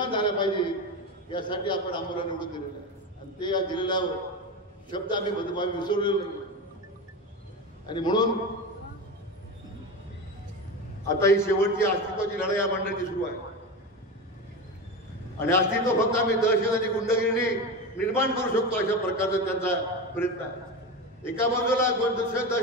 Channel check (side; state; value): both; normal; correlation 0.22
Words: झाल्या पाहिजे. यासाठी आपण आम्हाला निवडून दिलेलं आहे आणि ते या दिलेला शब्द आम्ही विसरलेलो नाही. आणि म्हणून आता ही शेवटची अस्तित्वाची लढाई या मंडळाची सुरू आहे. आणि अस्तित्व फक्त आम्ही दहशत आणि गुंडगिरीने निर्माण करू शकतो, अशा प्रकारचा त्यांचा प्रयत्न आहे. एका बाजूला